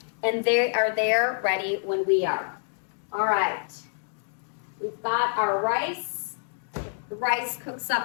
And they are there ready when we are. All right. We've got our rice. The rice cooks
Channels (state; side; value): silent; right; digital silence